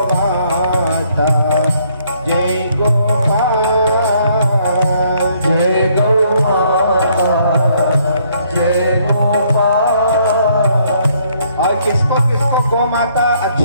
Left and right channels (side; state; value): both; inverted; correlation -0.67